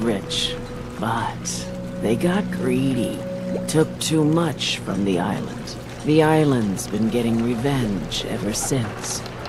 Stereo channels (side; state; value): both; identical; correlation 1.00